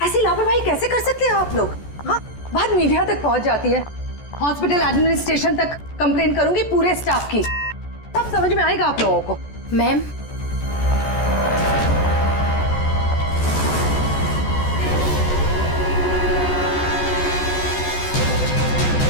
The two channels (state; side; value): late; right; 14 ms